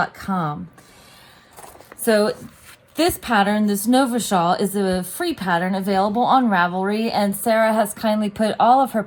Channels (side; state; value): both; identical; correlation 1.00